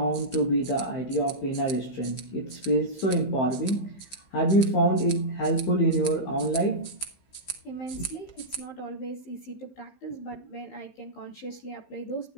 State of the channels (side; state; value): right; late; 15 ms